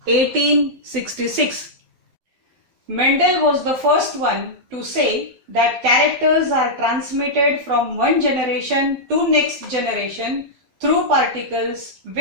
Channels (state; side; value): late; left; 12 ms